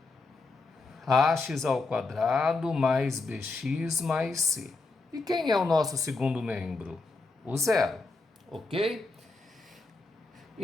Ax ao quadrado mais bx mais c. E quem é o nosso segundo membro? O zero, ok?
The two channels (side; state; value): right; quieter; 3.6 dB